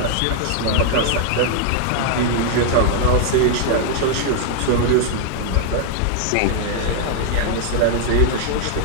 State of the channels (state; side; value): different; both; correlation 0.00